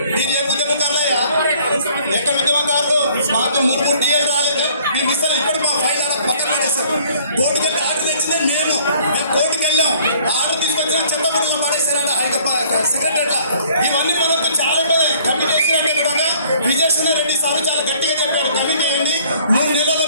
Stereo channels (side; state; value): both; inverted; correlation -0.57